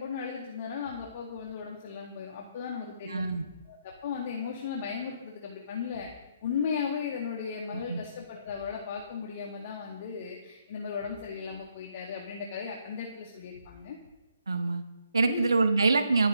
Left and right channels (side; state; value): both; inverted; correlation -0.73